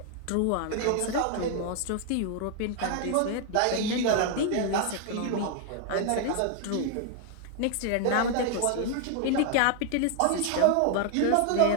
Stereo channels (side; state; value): both; different; correlation 0.00